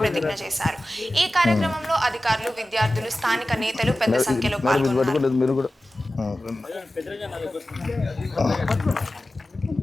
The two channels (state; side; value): normal; both; correlation 0.95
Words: ప్రతిజ్ఞ చేశారు. ఈ కార్యక్రమంలో అధికారులు, విద్యార్థులు, స్థానిక నేతలు పెద్ద సంఖ్యలో పాల్గొన్నారు.